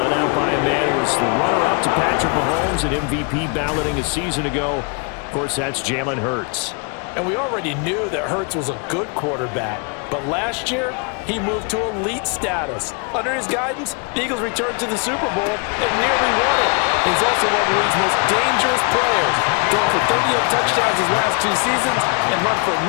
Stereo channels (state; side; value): quieter; right; 35.3 dB